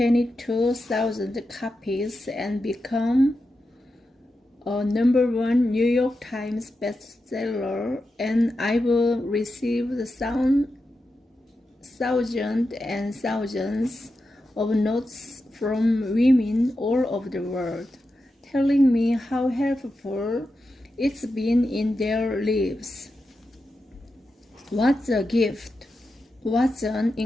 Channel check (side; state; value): both; normal; correlation 0.89